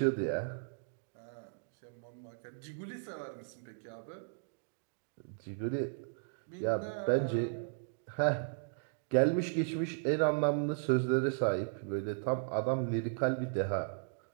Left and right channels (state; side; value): silent; left; digital silence